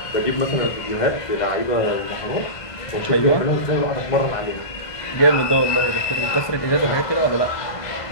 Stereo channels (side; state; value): right; late; 1.5 ms